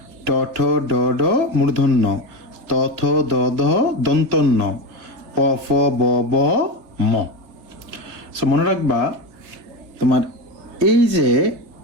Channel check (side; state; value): left; late; 3.3 ms